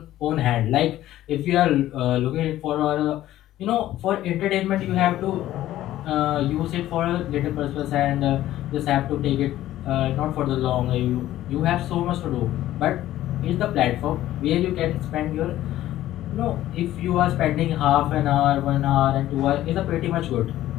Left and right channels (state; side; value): quieter; right; 14.0 dB